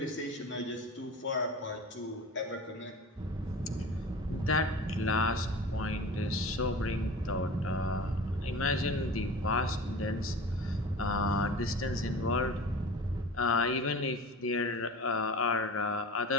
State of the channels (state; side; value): normal; both; correlation 0.36